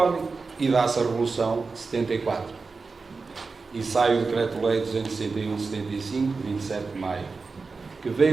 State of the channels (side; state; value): left; quieter; 4.3 dB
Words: e dá-se a Revolução de 74 e sai o Decreto-Lei 261/75, 27 de maio, que